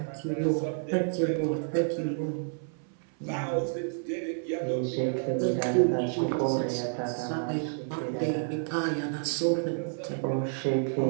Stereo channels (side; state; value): left; silent; 58 dB below the other